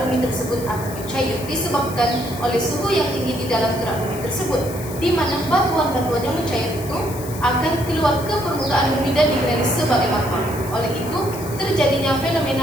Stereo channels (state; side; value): noise; left; hiss, 14 dB below the sound